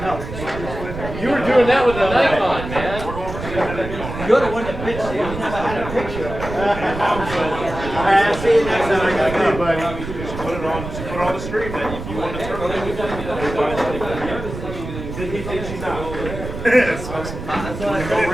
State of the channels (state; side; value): noise; right; rumble, 9 dB below the sound